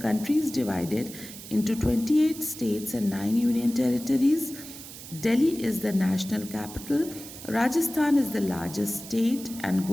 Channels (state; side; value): noise; right; hiss, 14 dB below the sound